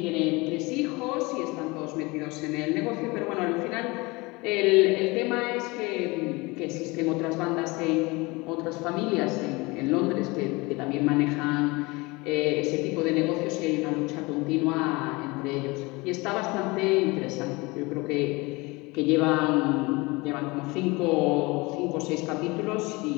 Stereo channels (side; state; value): right; quieter; 24.3 dB